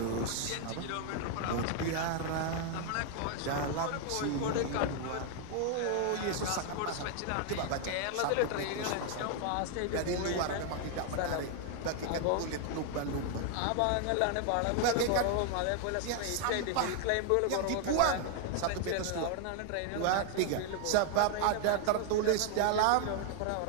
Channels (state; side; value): different; both; correlation 0.00